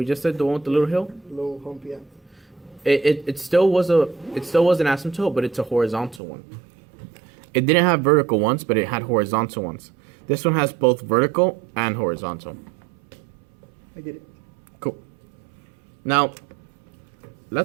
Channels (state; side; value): drops out; left; at 6.2 s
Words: just said, the one with the little hill. Low hump, yeah. It still was an asymptote, but it's a horizontal one. It didn't have vertical ones, but it had horizontal ones. This one has both vertical and horizontal. I get it. Cool. Now,